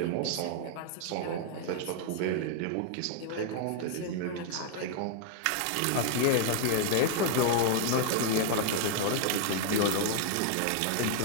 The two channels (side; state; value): both; different; correlation 0.00